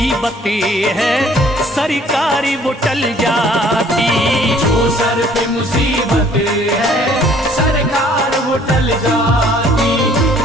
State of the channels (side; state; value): both; normal; correlation 0.58